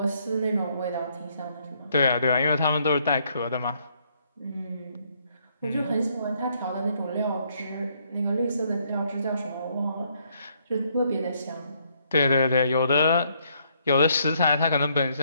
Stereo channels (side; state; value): both; inverted; correlation -0.70